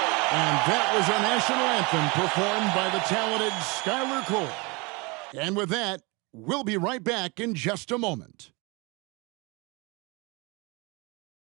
That was our national anthem performed by the talented Skylar Cole. And with that, we'll be right back in just a moment.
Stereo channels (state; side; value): quieter; left; 27.8 dB